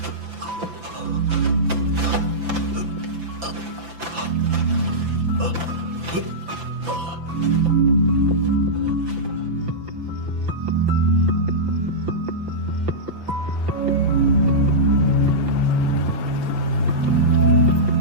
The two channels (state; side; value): late; left; 5.9 ms